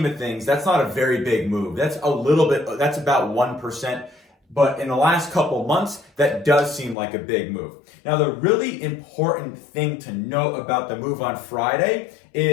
of things, that's not a very big move. That's about 1%. But in the last couple months, that does seem like a big move. Now, the really important thing to note about the move on Friday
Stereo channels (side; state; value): right; drops out; at 7.0 s